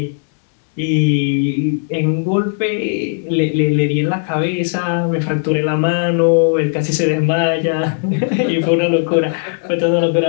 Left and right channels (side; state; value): right; silent; digital silence